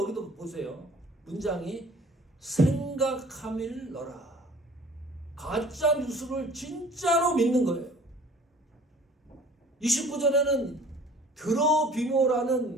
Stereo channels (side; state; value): both; normal; correlation 0.50